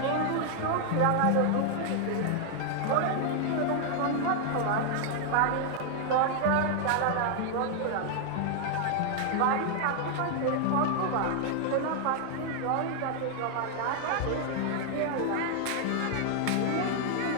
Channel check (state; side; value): different; both; correlation 0.00